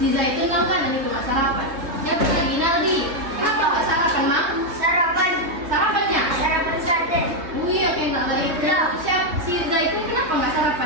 Si Zaitun tahu kan ini nggak sarapan. Siapa lagi? Naldi. Apa nggak sarapan, Mang? Sarapan. Sarapannya? Sarapan sate. Iya, kayak nggak lagi. Siap si Zaitun kenapa nggak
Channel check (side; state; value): left; late; 3.2 ms